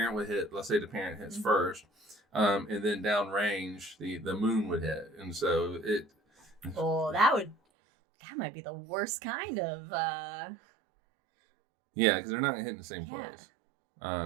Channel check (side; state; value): left; drops out; at 7.6 s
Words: would hit. Let's say the parent hits first, and then downrange the moon would hit, and so it. Oh, that might be the worst kind of. Yeah, because they're not hitting the same place.